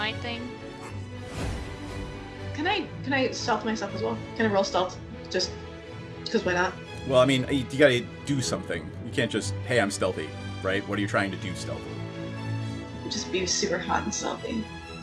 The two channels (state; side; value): identical; both; correlation 1.00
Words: thing? Can I stealth myself as well? Can I roll stealth? Just because why not? Well, I mean, you gotta do something. You can't just, hey, I'm stealthy, right? What are you trying to do stealthy? Just be super hot and stealthy.